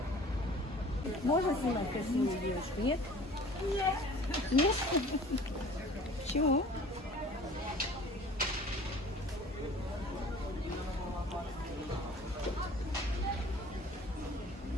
Можно снимать красивую девушку? Нет? Нет. Нет? Почему?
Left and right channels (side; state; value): both; normal; correlation 0.47